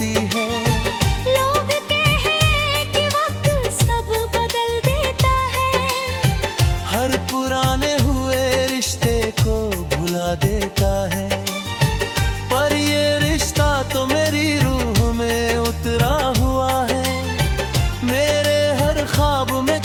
है। लोग कहे कि वक्त सब बदल देता है, हर पुराने हुए रिश्ते को भुला देता है। पर ये रिश्ता तो मेरी रूह में उतरा हुआ है, मेरे हर ख्वाब में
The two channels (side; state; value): both; identical; correlation 1.00